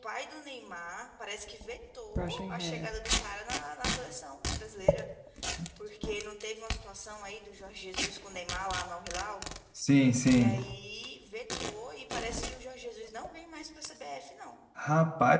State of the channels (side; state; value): both; identical; correlation 1.00